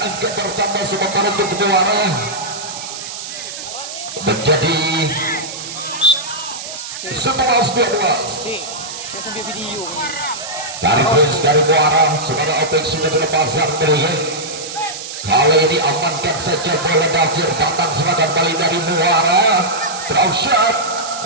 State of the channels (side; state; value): right; noise; hiss, 9 dB below the sound